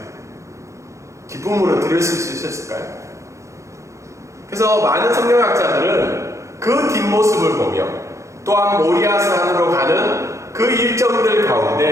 기쁨으로 들으실 수 있었을까요? 그래서 많은 성경학자들은 그 뒷모습을 보며 또한 모리아 산으로 가는 그 일정들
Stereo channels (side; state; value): left; late; 0.15 ms